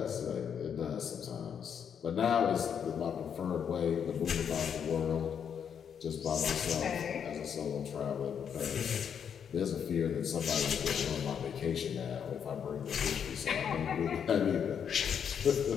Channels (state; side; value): quieter; right; 7.8 dB